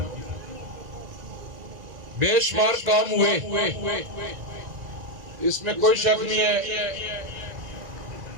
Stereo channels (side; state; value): left; late; 1.9 ms